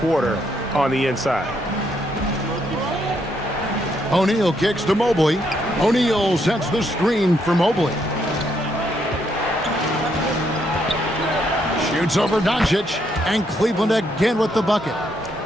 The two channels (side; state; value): both; normal; correlation 0.74